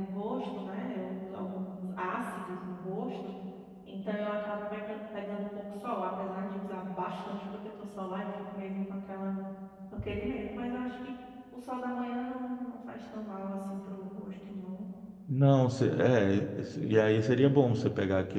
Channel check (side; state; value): both; identical; correlation 1.00